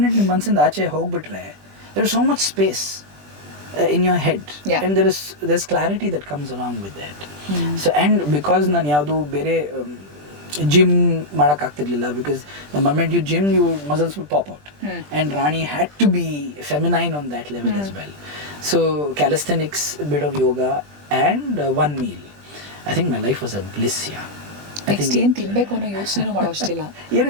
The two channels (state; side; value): late; left; 20 ms